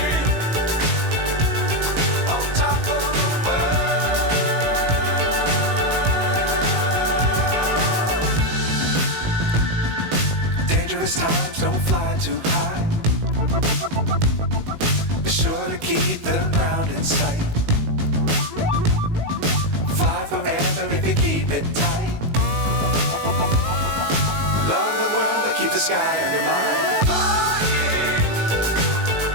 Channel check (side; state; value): left; late; 19 ms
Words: Dangerous times, don't fly too high. Be sure to keep the ground in sight. Fly forever if you keep it tight. Love the world, but keep the sky on your mind.